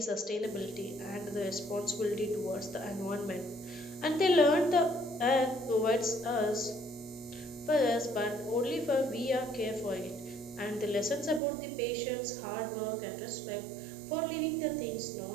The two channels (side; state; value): left; drops out; at 11.4 s